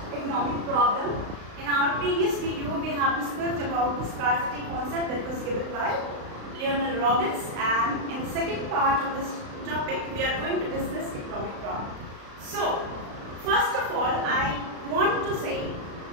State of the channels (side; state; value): left; late; 35 ms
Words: economic problem. In our previous video, we have discussed about the scarcity concept that was given by Leonel Robbins, and in the second part of this topic, we are going to discuss economic problem. So, first of all, I want to say